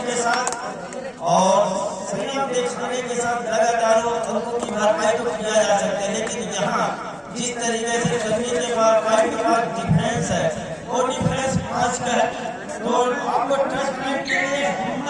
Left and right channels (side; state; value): both; identical; correlation 1.00